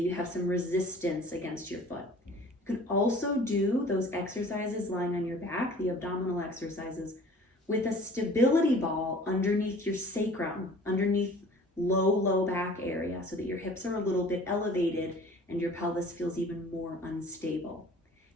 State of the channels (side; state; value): both; normal; correlation 0.47